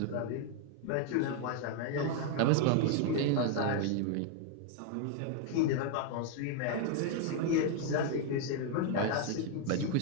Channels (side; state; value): both; different; correlation 0.00